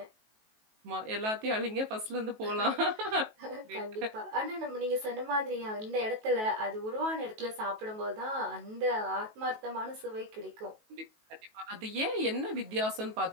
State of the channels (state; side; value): late; left; 19 ms